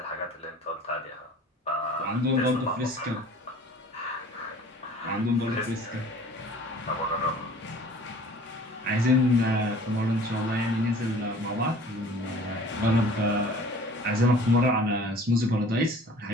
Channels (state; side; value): normal; both; correlation 0.47